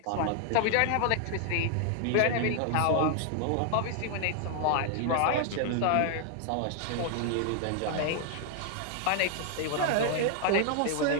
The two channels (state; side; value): different; both; correlation 0.00